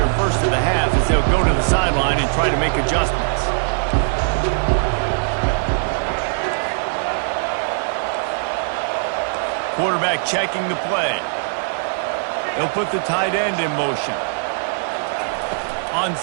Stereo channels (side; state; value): left; silent; digital silence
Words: first of the half as they'll go to the sideline and try to make adjustments. Quarterback checking the play. They'll put the tight end in motion. On